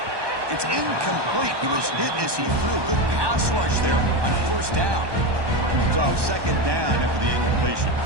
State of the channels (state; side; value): late; left; 1.2 ms